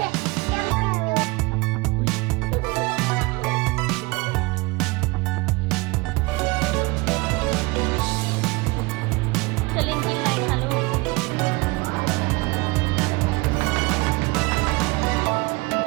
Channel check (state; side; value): quieter; left; 24.8 dB